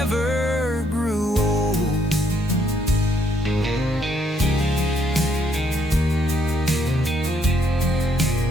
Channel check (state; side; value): normal; both; correlation 0.71